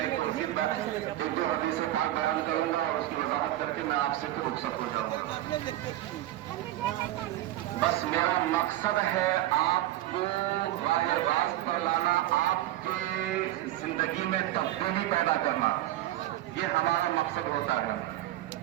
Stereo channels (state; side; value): quieter; left; 14.8 dB